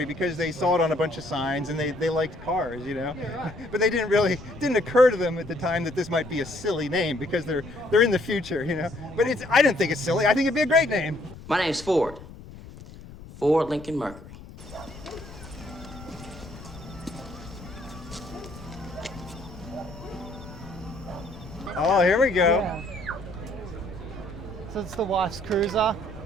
because they saw it on a bunch of signs and they liked cars, you know? Yeah, right. But they didn't occur to them at the time that this might be a silly name because they're in the future, you know? But I didn't think it's silly, I think it'd be a great name. My name's Ford. Ford Lincoln Mercury. Oh, here we go. Yeah. So it's the wife's cruiser.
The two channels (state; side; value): noise; left; rumble, 16 dB below the sound